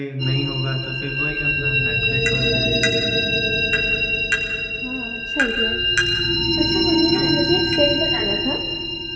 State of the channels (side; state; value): both; identical; correlation 1.00